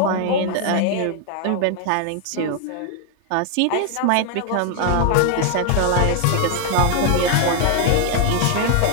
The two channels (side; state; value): both; different; correlation 0.00